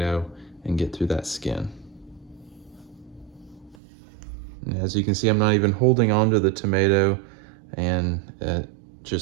and get through that skin. And as you can see, I'm not even holding onto the tomato, and it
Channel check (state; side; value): drops out; left; at 3.8 s